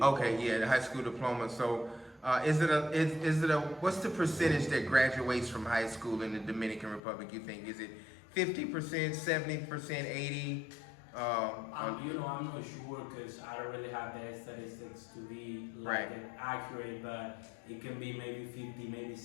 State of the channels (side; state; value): right; drops out; at 7.0 s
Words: Okay, yeah, the high school diploma. So, is it a what's the percentage that graduates from high school in the Dominican Republic? You think is it 50%, 70%, 80%? I'm not sure because I don't really have the statistics to be accurate, but it can be maybe 50, maybe